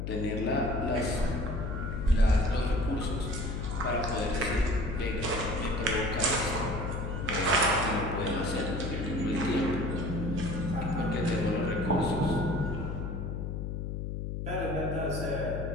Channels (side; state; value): left; noise; hum, 3 dB below the sound